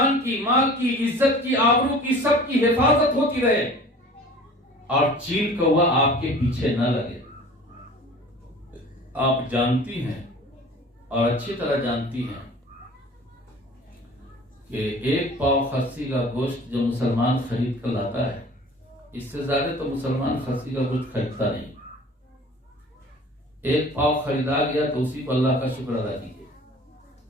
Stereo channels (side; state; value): both; normal; correlation 0.44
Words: کی، مال کی، عزت کی، آبرو کی، سب کی حفاظت ہوتی رہے اور چیل کوا آپ کے پیچھے نہ لگے۔ آپ جانتی ہیں اور اچھی طرح جانتی ہیں کہ ایک پاؤ خسی کا گوشت جو مسلمان خرید کر لاتا ہے، اس سے زیادہ تو مسلمان خسی کا گوشت خریدتا نہیں۔ ایک پاؤ خریدا گیا تو اسی کو اللہ کا شکر ادا کیجیے۔